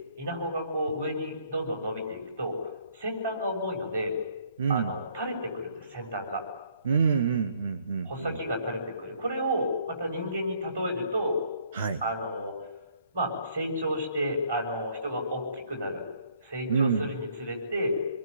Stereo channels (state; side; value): inverted; both; correlation -0.64